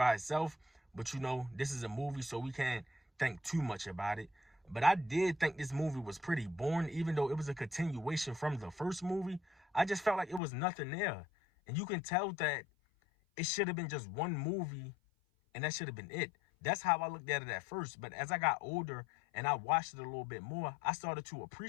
itself. But, you know, this is a movie, so we can't think too much about it. But I did think this movie was pretty boring, even though it was a continuation from the first movie. I just felt like it was nothing there. And you can tell that it should have been just one movie, and that should have been it. That's how I looked at it at first. But as I got older and I watched it a little bit more, I started to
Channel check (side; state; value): right; drops out; at 10.4 s